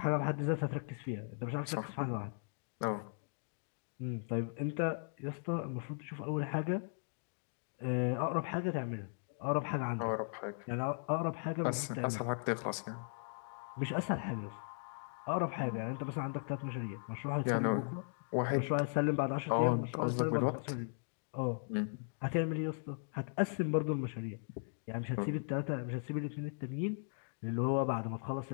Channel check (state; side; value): silent; right; digital silence